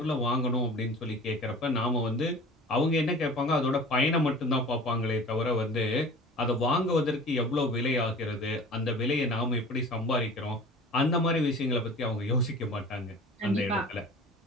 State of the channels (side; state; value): both; normal; correlation 0.41